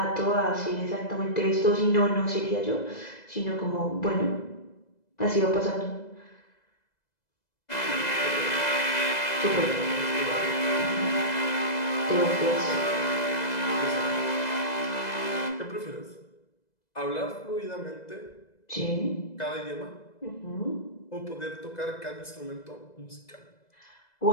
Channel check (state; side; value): late; right; 2.0 ms